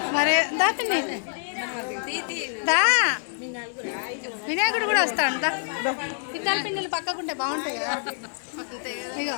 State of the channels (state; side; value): silent; right; digital silence